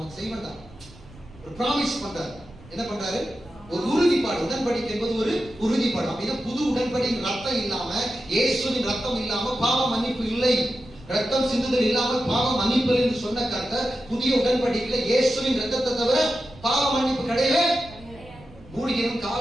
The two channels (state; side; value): noise; right; rumble, 21 dB below the sound